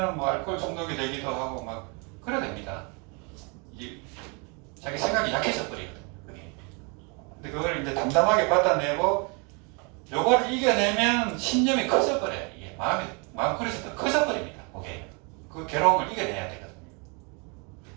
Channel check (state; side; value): quieter; left; 33.2 dB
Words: 뭐 알코올 중독이 되기도 하고 막 그래야 됩니다. 자기 생각이 약해져 버리거든요. 그게. 근데 그걸 이제 담담하게 받아내고 요걸 이겨내면 신념이 커져버려요. 이게 마음그릇이 더 커져버립니다. 그게. 그 괴로움을 이겨내야 되거든요.